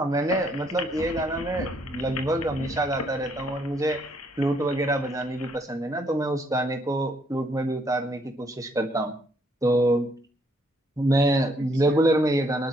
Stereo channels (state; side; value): normal; both; correlation 0.69